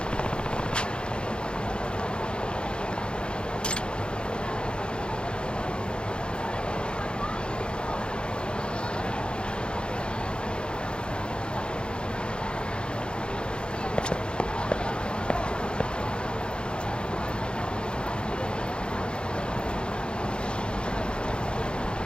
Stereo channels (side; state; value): right; late; 0.053 ms